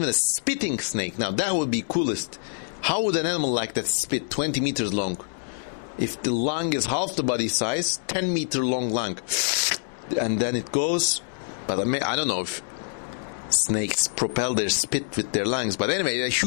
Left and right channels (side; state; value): right; silent; 61 dB below the other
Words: a spitting snake. Now, that would be coolest. How would an animal like that spit 20 meters long? If the lung is half the body size, 10-meter long lung. And then it goes. But I don't know if snakes propel their spit with their lungs. But anyway, a